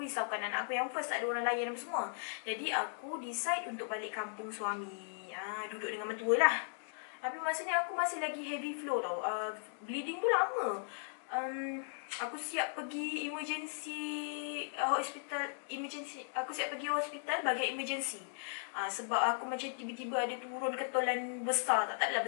risaukan anak aku yang first, tak ada orang layan apa semua. Jadi aku decide untuk balik kampung suami. Duduk dengan mertua lah. Tapi masa ni aku masih lagi heavy flow tau. Bleeding tu lama. Aku siap pergi hospital. Aku siap pergi hospital bagian emergency. Sebab aku macam tiba-tiba ada turun ketolan besar. Tak adalah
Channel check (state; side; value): silent; right; digital silence